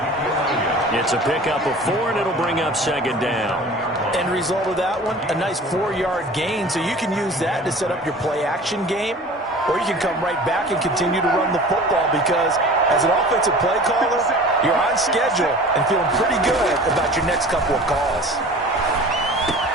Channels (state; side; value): normal; both; correlation 0.42